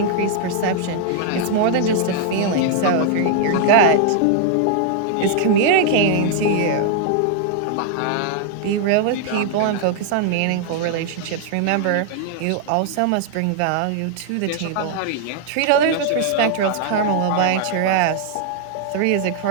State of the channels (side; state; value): both; different; correlation -0.01